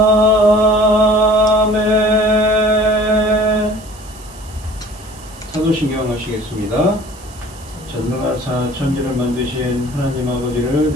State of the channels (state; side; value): noise; right; hiss, 21 dB below the sound